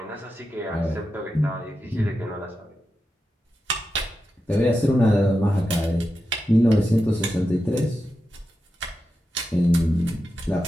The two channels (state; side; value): normal; both; correlation 0.90